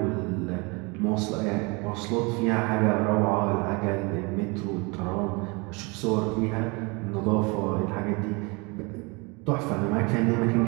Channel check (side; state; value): left; quieter; 28.4 dB